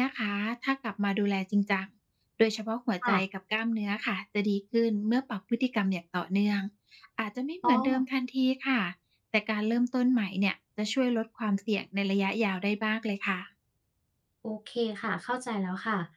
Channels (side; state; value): both; identical; correlation 1.00